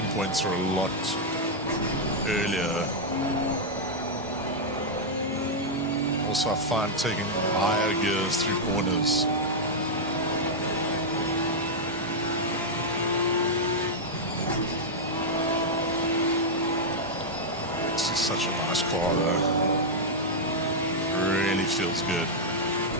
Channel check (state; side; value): normal; both; correlation -0.04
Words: points are a lot earlier. Also, I find taking higher gears through corners. This is such a nice car though. Really feels good.